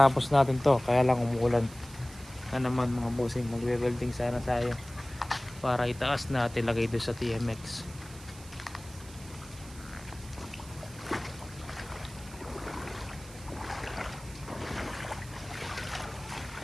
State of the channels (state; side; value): noise; right; hiss, 19 dB below the sound